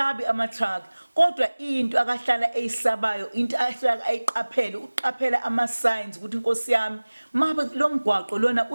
ama-truck kodwa into akahlala eyisabayo into ahlala ayiqaphele uqaphela ama-signs ukuthi inkosi yami mabe lo mgwaqo lona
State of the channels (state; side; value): inverted; both; correlation -1.00